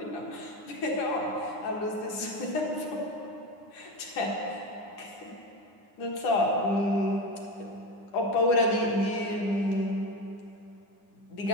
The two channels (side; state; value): right; late; 9.8 ms